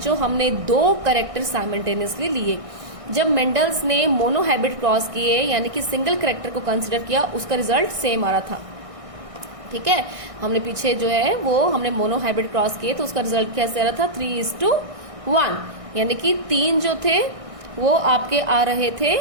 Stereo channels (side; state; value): left; late; 1.6 ms